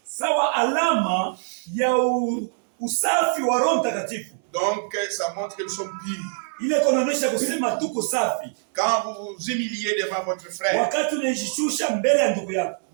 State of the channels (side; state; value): left; silent; 63 dB below the other